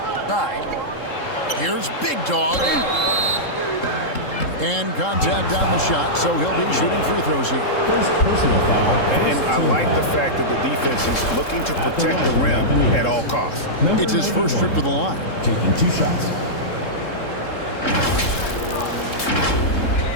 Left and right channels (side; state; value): right; late; 3.7 ms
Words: Here's Big Dog. And contact on the shot, so he'll be shooting free throws here. First personal foul. And I like the fact that the defense is looking to protect the rim at all costs. It's his first trip to the line. Taking 2 shots.